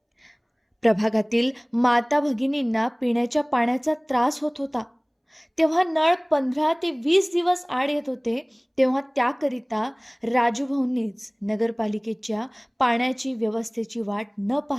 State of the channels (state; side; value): identical; both; correlation 1.00